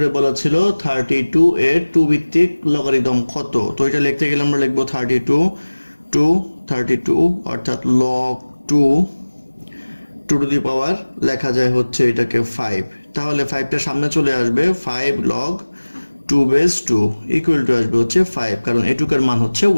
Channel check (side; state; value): both; inverted; correlation -1.00